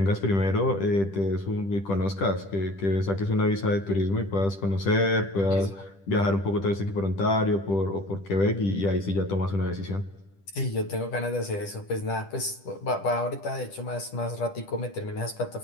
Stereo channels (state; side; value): late; right; 10 ms